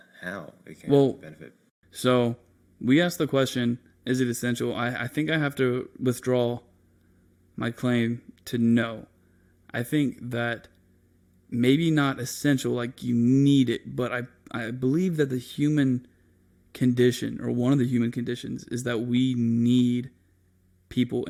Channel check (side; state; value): both; identical; correlation 1.00